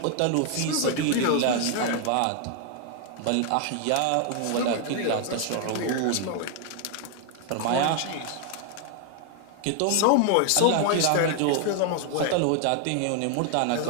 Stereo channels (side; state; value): both; different; correlation 0.00